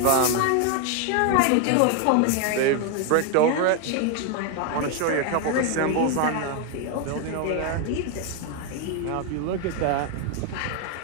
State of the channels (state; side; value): different; both; correlation 0.01